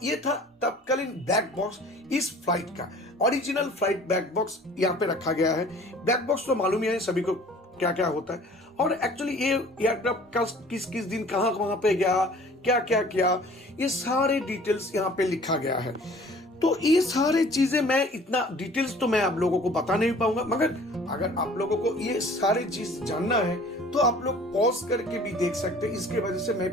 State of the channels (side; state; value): both; normal; correlation 0.50